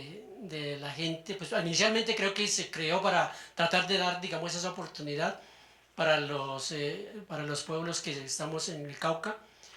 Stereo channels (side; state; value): both; identical; correlation 1.00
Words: la gente. Pues inicialmente creo que se creó para tratar de dar, digamos, esa oportunidad para los pueblos que estamos en el Cauca,